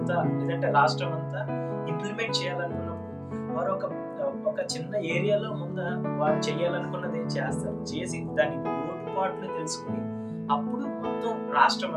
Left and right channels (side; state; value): both; identical; correlation 1.00